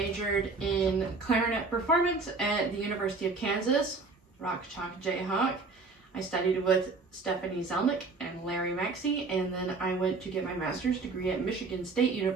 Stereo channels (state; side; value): quieter; left; 3.9 dB